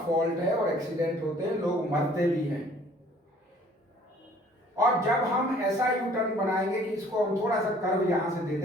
है और एक्सीडेंट होते हैं, लोग मरते भी हैं। और जब हम ऐसा यू टर्न बनाएंगे कि इसको हम थोड़ा सा कर्व यहां से दे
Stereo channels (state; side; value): normal; both; correlation 0.56